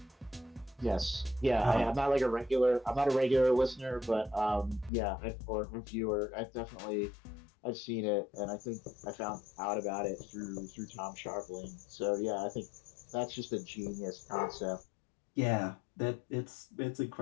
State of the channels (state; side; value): drops out; right; at 4.9 s